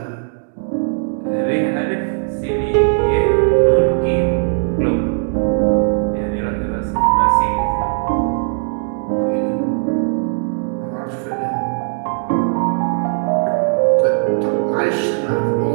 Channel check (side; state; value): left; silent; 67 dB below the other